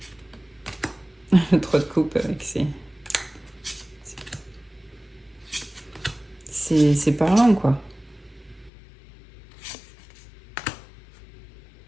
Le 3 de coupe avec c'est parlant, quoi.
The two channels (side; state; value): right; drops out; at 8.7 s